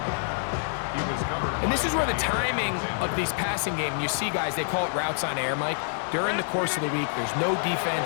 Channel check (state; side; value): silent; right; digital silence